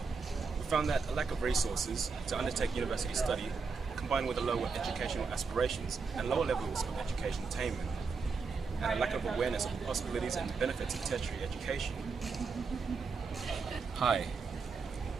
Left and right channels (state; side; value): quieter; left; 4.8 dB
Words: We found that a lack of resources to undertake university study, combined with a lower educational aspirations and lower levels of education attainment, and a lack of awareness of the possibilities and benefits of tertiary education. Hi,